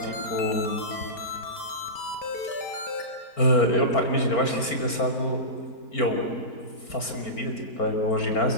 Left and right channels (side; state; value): right; late; 4.4 ms